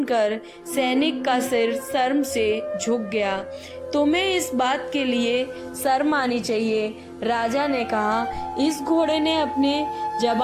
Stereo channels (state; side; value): identical; both; correlation 1.00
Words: सैनिक का सिर शर्म से झुक गया। तुम्हें इस बात के लिए शर्म आनी चाहिए, राजा ने कहा। इस घोड़े ने अपने